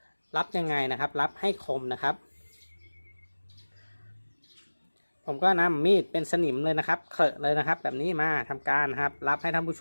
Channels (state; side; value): inverted; both; correlation -1.00